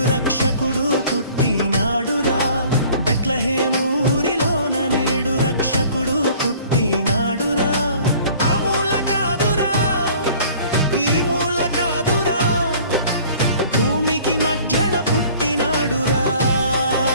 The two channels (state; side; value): inverted; both; correlation -0.51